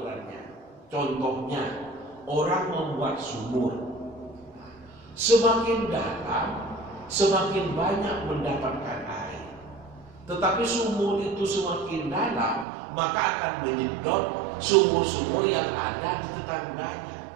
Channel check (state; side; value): drops out; left; at 12.7 s